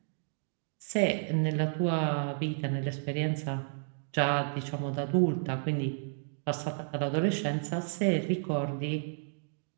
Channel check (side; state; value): left; silent; digital silence